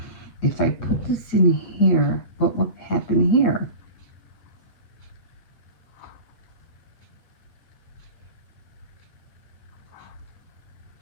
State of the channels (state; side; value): late; right; 9.3 ms